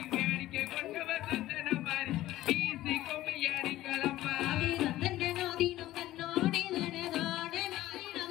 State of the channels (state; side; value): quieter; right; 15.4 dB